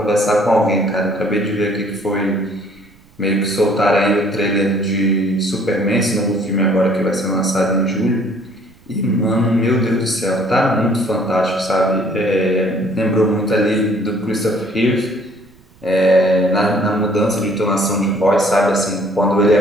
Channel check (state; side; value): noise; right; rumble, 29 dB below the sound